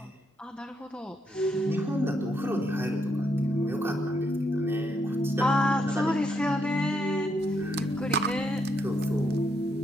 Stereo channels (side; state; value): both; normal; correlation 0.77